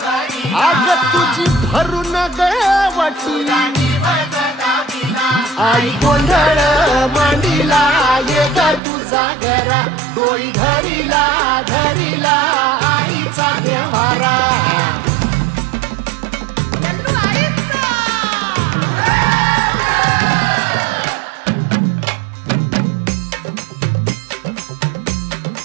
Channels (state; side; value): drops out; left; at 8.8 s